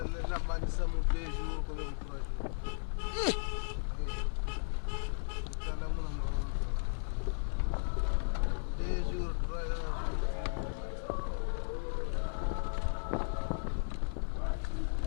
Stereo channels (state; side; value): silent; right; 54 dB below the other